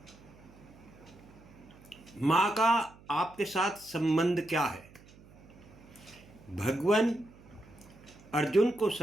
माँ का आपके साथ संबंध क्या है? भगवान अर्जुन को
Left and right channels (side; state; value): right; noise; hum, 23 dB below the sound